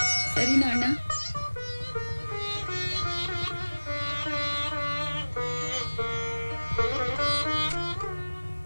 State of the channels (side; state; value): both; inverted; correlation -1.00